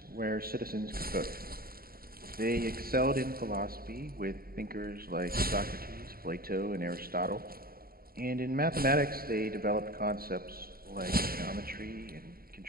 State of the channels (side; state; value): left; late; 0.43 ms